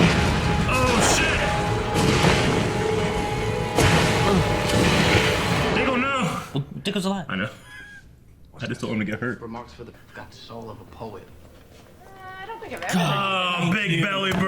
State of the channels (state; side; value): identical; both; correlation 1.00